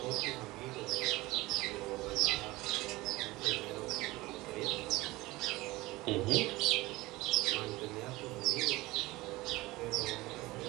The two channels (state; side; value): quieter; left; 20.0 dB